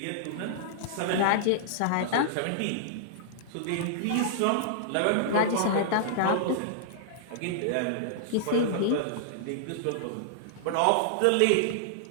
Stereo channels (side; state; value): both; different; correlation -0.01